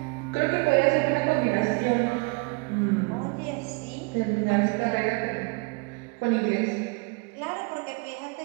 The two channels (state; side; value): quieter; left; 30.5 dB